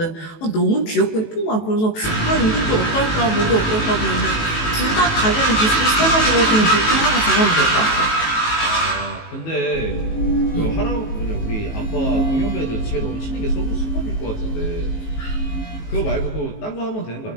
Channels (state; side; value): late; right; 19 ms